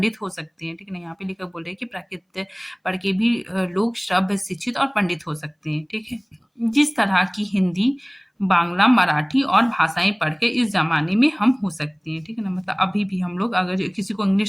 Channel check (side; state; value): both; identical; correlation 1.00